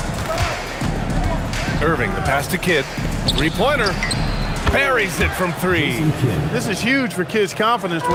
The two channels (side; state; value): both; identical; correlation 1.00